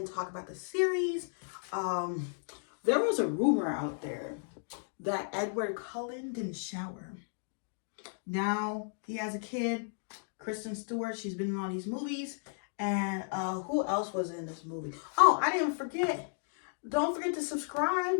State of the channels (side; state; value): right; silent; digital silence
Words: talk about the series. There was a rumor out there that Edward Cullen didn't shower. Now he has a kid, Kristen Stewart. She's been in all these movies. And who else was in this movie? Oh, I didn't forget. Don't forget to subscribe.